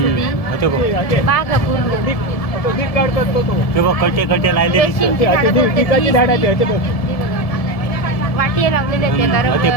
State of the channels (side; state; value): right; late; 1.7 ms